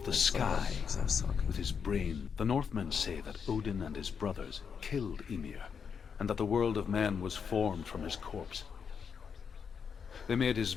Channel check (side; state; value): right; quieter; 6.6 dB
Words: the sky, Because I was talking. with his brain. The Northmen say that Odin and his brothers killed Ymir, and that the world of men was formed from his corpse. They made his